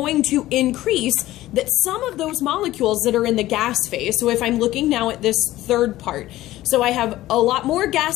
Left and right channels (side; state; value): right; quieter; 15.7 dB